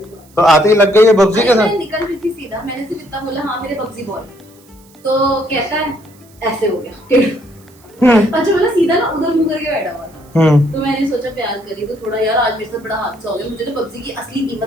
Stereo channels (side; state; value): right; noise; hiss, 28 dB below the sound